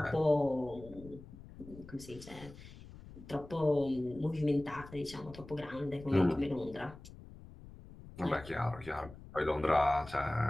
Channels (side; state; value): left; noise; rumble, 17 dB below the sound